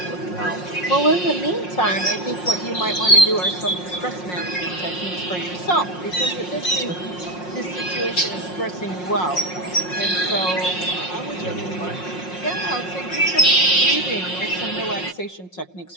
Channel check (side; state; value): right; late; 5.5 ms